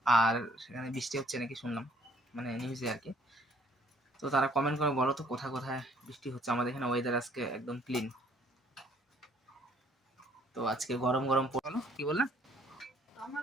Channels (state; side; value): normal; both; correlation 0.61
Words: আর সেখানে বৃষ্টি হচ্ছে নাকি শুনলাম, মানে নিউজে আর কি। তো তারা কমেন্ট করে বলো তো কোথায় কোথায় বৃষ্টি হচ্ছে। আমাদের এখানে ওয়েদার আজকে একদম ক্লিন। তো আজকে গরম গরম পড়লো। কি বললেন?